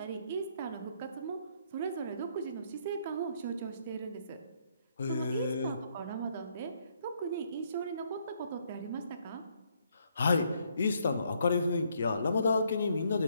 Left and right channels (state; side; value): inverted; both; correlation -0.70